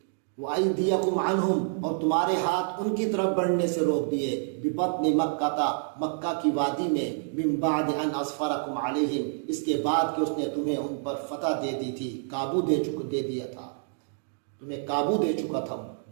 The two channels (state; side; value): silent; left; digital silence